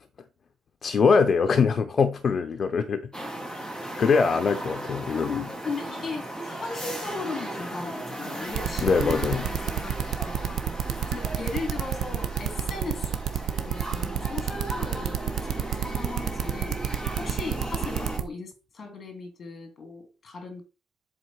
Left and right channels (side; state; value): both; normal; correlation 0.72